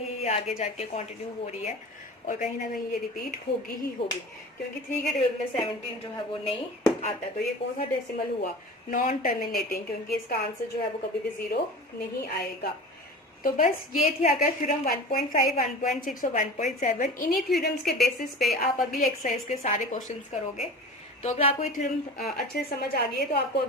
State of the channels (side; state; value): both; normal; correlation 0.36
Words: ये आगे जाके कंटिन्यू हो रही है और कहीं ना कहीं ये रिपीट होगी ही होगी, क्योंकि 3 के टेबल में 17 जो है वो नहीं आता। तो ये कौन सा डेसिमल हुआ, नॉन टर्मिनेटिंग, क्योंकि इसका आंसर जो है वो कभी भी 0 नहीं आएगा। तो बस ये थी आकर थ्योरम 1.5, 1.6 और 1.7। इन्हीं थ्योरम्स के बेसिस पे आप अगली एक्सरसाइज के सारे क्वेश्चंस करोगे। तो अगर आपको ये थ्योरम अच्छे से समझ आ गई है तो आपको